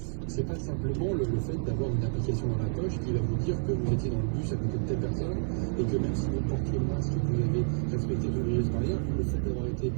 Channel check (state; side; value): silent; left; 58 dB below the other